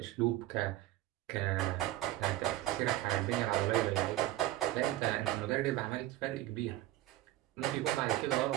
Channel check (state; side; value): quieter; left; 15.6 dB